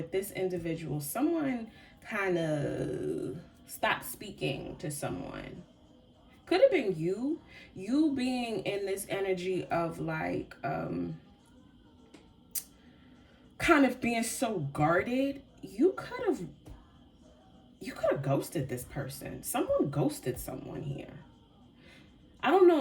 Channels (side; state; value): both; identical; correlation 1.00